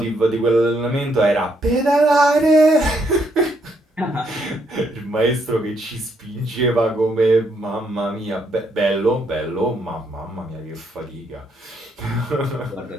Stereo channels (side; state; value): both; normal; correlation 0.74